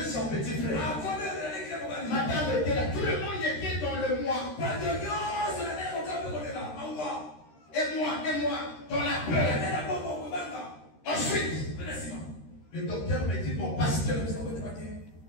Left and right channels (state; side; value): late; right; 13 ms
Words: son petit frère. Madame était là. Tout le monde était dans le mois. Et moi, dans la peur. Ensuite, le docteur me dit, mon pasteur,